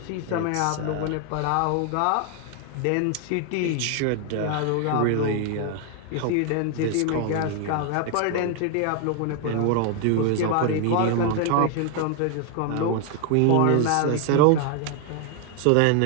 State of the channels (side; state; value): both; different; correlation 0.00